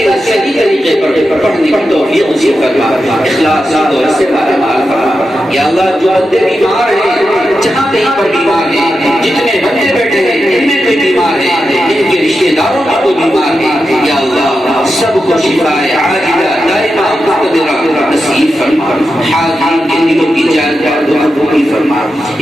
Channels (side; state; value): both; normal; correlation 0.89